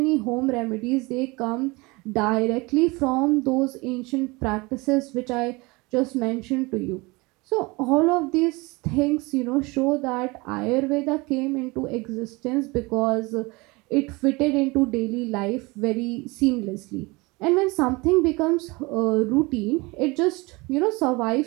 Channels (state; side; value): quieter; left; 24.7 dB